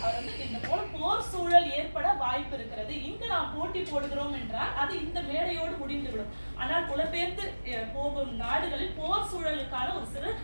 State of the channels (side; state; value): both; inverted; correlation -1.00